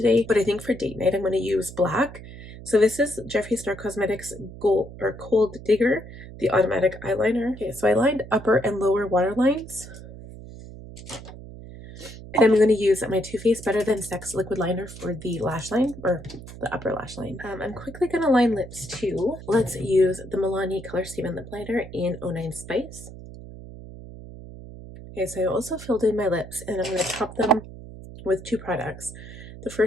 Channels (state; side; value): noise; right; hum, 14 dB below the sound